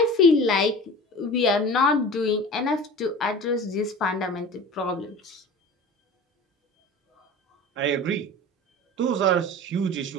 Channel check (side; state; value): both; normal; correlation 0.37